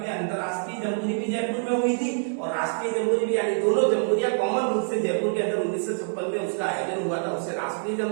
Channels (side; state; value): left; silent; digital silence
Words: में अंतरराष्ट्रीय जम्बूरी भी जयपुर में हुई थी और राष्ट्रीय जम्बूरी भी, यानी दोनों जम्बूरियां कॉमन रूप से जयपुर के अंदर 1956 में उसका आयोजन हुआ था। उसे राष्ट्रीय